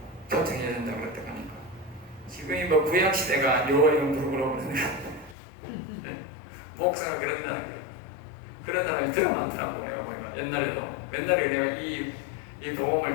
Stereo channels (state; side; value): drops out; right; at 5.4 s